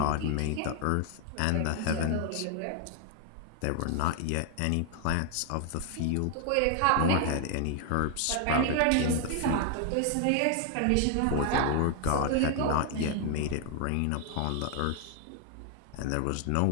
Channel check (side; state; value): both; different; correlation 0.00